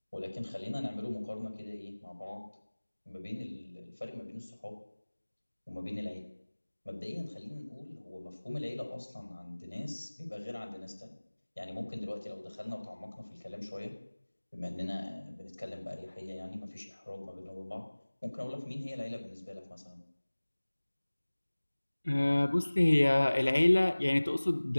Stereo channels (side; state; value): both; inverted; correlation -1.00